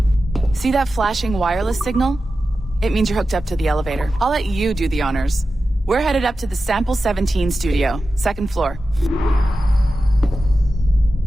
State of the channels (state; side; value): normal; both; correlation 0.93